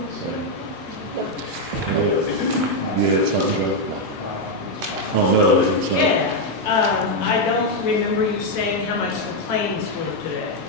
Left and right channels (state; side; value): normal; both; correlation 0.02